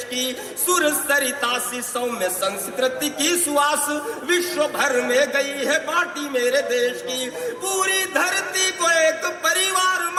की, सुर सरिता सी सौम्य संस्कृति की सुवास विश्व भर में गई है बाटी मेरे देश की, पूरी धरती को एक परिवार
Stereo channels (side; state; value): both; identical; correlation 1.00